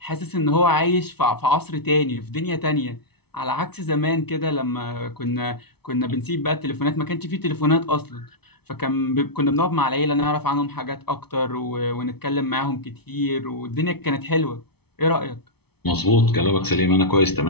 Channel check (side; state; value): right; late; 0.98 ms